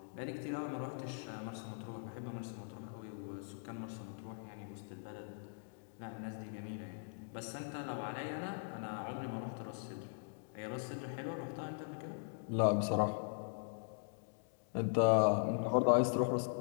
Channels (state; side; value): silent; right; digital silence